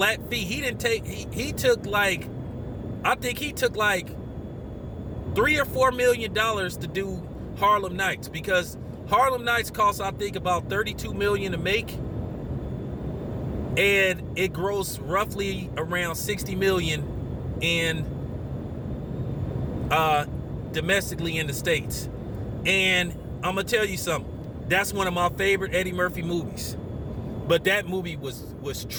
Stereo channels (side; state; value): both; identical; correlation 1.00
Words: fee. He took like $3 or $4 million to do Harlem Nights, because Harlem Nights costs, I think, about $32 million to make, and it grossed roughly around $60 million domestically in the States. And I'm gonna tell you something. That's one of my favorite Eddie Murphy movies. But that movie was